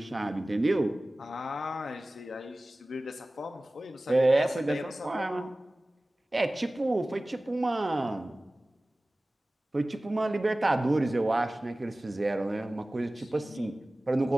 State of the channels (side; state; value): both; normal; correlation 0.97